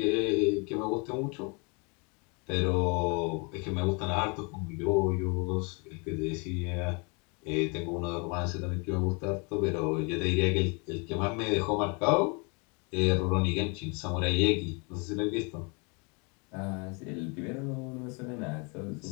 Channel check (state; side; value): quieter; right; 32.7 dB